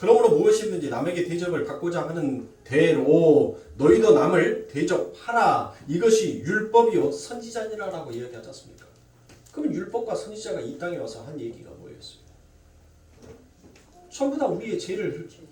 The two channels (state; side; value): identical; both; correlation 1.00